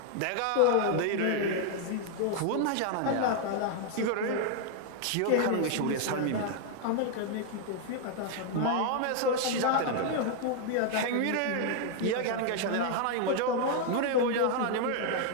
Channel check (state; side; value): different; both; correlation 0.00